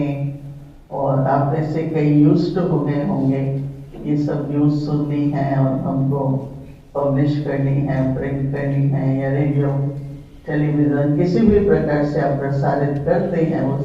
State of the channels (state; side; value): identical; both; correlation 1.00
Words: और आप में से कई यूज्ड हो गए होंगे ये सब न्यूज़ सुननी है और हमको पब्लिश करनी है, प्रिंट करनी है, या रेडियो टेलीविजन किसी भी प्रकार से आप प्रसारित करते हैं वो